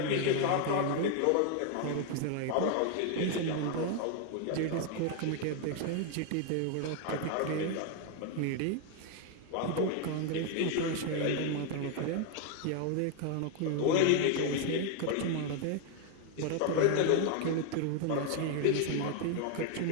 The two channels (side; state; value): both; different; correlation 0.01